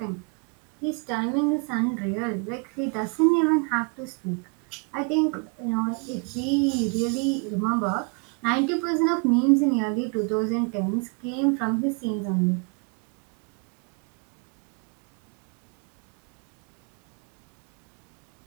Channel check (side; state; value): left; quieter; 35.6 dB